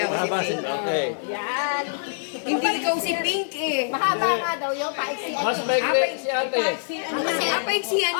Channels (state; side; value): silent; right; digital silence